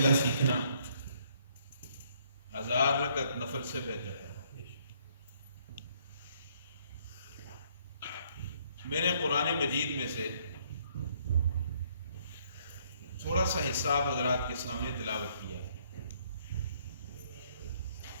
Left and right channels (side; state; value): both; inverted; correlation -0.66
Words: سیکھنا 1000 رکعت نفل سے بہتر ہے۔ میں نے قرآن مجید میں سے تھوڑا سا حصہ حضرات کے سامنے تلاوت کیا۔